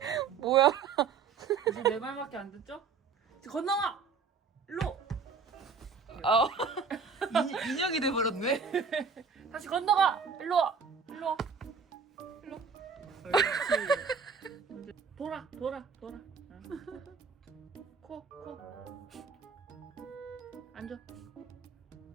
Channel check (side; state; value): left; quieter; 5.5 dB